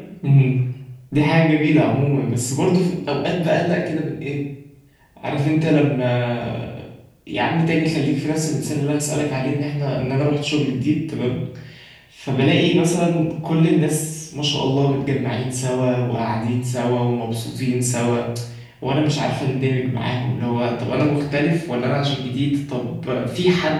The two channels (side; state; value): both; identical; correlation 1.00